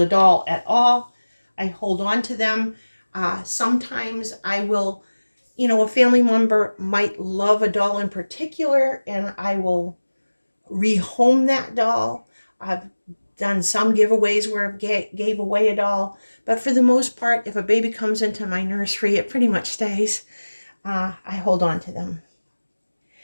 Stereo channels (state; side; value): inverted; both; correlation -1.00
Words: doll at all. I hold on to them. Sometimes I will, a family member might love a doll in particular, and I will rehome that doll. I've done some giveaways where I gave away a doll, but for the most part, if a baby comes into my nursery, it pretty much stays. I hold on to them.